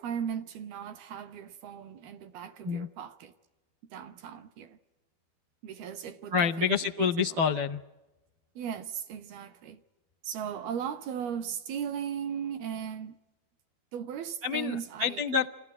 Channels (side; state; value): left; late; 12 ms